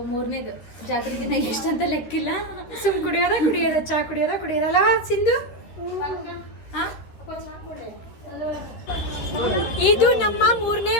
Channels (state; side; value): late; right; 13 ms